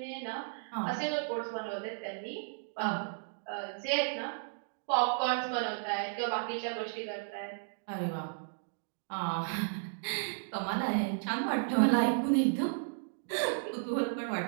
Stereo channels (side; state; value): left; silent; digital silence